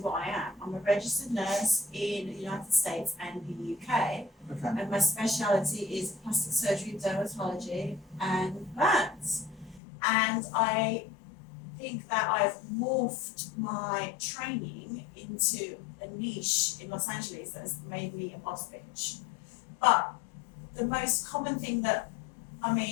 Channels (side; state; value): right; drops out; at 9.8 s